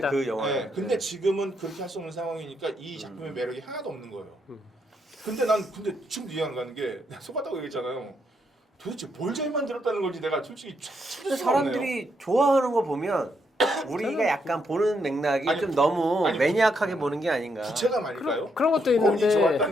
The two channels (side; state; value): both; normal; correlation 0.77